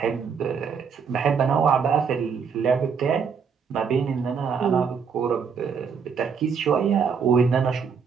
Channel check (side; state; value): left; quieter; 6.3 dB